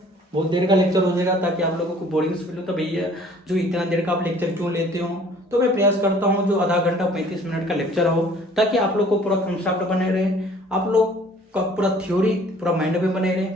बहुत देर का लेक्चर हो जाएगा ताकि आप लोगों को बोरिंग फील हो, तो भैया जो इतना देर का आप लेक्चर क्यों लेते हो, तो मैं प्रयास करता हूँ जो आधा घंटा 35 मिनट का लेक्चर हो, ताकि आप लोग को पूरा कंसेप्ट बने रहे, आप लोग का पूरा थ्योरी पूरा माइंड में बने रहे।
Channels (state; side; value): normal; both; correlation 0.54